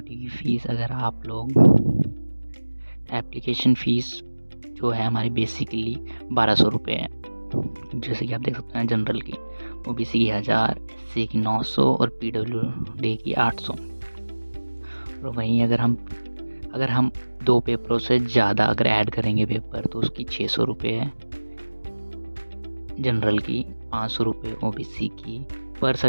की फ़ीस। अगर आप लोग एप्लीकेशन फ़ीस जो है हमारी बेसिकली 1200 रुपये है। जैसे कि आप देख सकते हैं, जनरल की, ओबीसी की 1000, एससी की 900 और पीडब्ल्यूडी की 800। और वहीं अगर हम 2 पेपरों से ज़्यादा अगर ऐड करेंगे पेपर, तो उसकी 600 रुपये है जनरल की, 500 रुपये ओबीसी की। पर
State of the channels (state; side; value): inverted; both; correlation -1.00